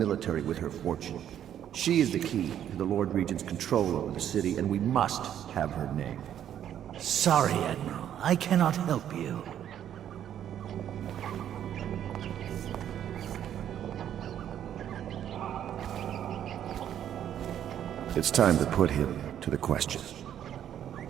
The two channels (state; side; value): quieter; left; 10.2 dB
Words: with her fortune. She is the key to the Lord Regent's control over the city, and we must have her name. Sorry, Admiral. I cannot help you. It's time to put him to the question.